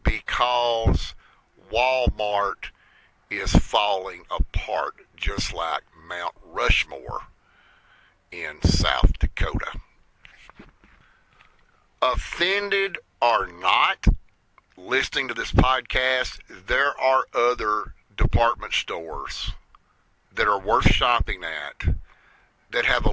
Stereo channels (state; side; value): identical; both; correlation 1.00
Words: because Walmart is falling apart just like Mount Rushmore in South Dakota. Offended or not, listening to this podcast, there are other department stores that are worth shopping at that have a